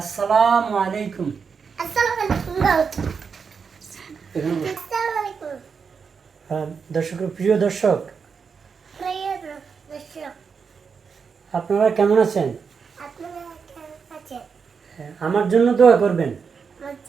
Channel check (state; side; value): quieter; left; 5.8 dB